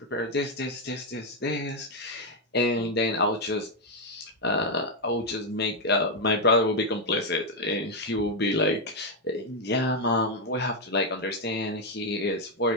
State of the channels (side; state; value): both; normal; correlation 0.02